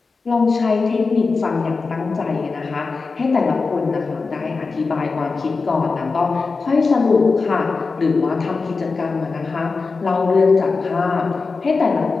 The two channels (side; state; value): right; quieter; 4.3 dB